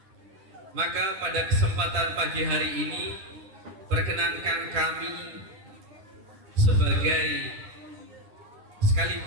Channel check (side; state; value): left; late; 10 ms